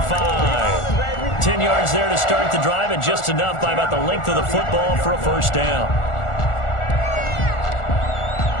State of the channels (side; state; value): right; late; 1.4 ms